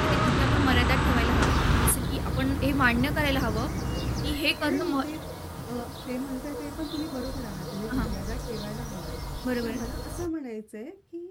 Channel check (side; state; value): both; identical; correlation 1.00